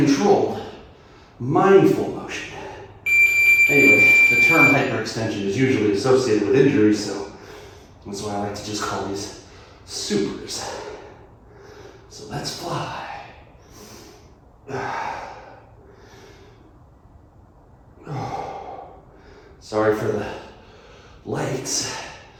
mindful motion. Anyway, the term hyperextension is usually associated with injuries, so that's why I like to just call these supers. So let's fly. Sorry for the lights.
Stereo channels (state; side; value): identical; both; correlation 1.00